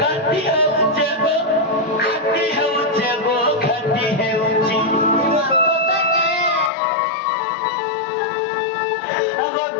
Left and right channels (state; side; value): drops out; right; at 6.7 s